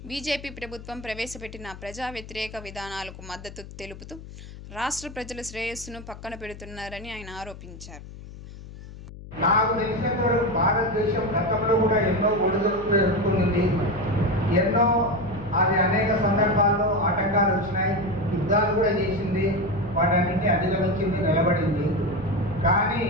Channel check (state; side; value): noise; left; hum, 15 dB below the sound